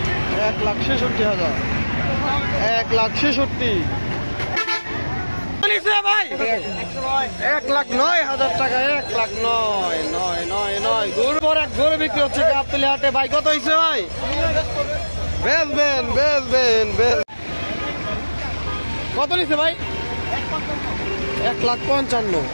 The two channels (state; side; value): inverted; both; correlation -1.00